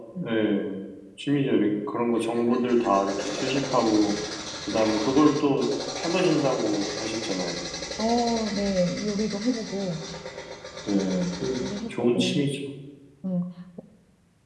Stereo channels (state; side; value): identical; both; correlation 1.00